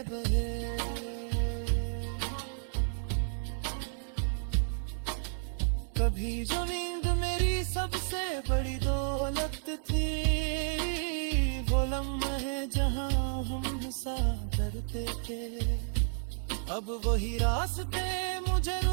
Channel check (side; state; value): left; silent; 57 dB below the other